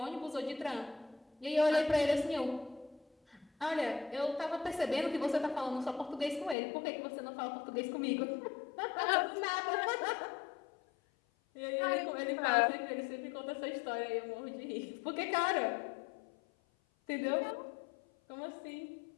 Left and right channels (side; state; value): right; drops out; at 6.6 s